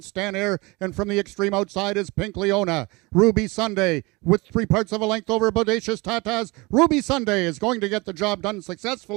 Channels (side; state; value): left; quieter; 24.9 dB